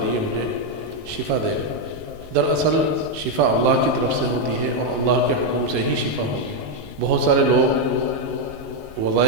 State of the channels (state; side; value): late; left; 19 ms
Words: مجھے شفا دے گا۔ دراصل شفا اللہ کی طرف سے ہوتی ہے اور اللہ کے حکم سے ہی شفا ہوگی۔ بہت سارے لوگ